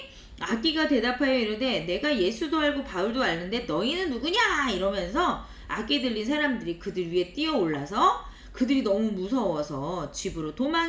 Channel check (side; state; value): both; identical; correlation 1.00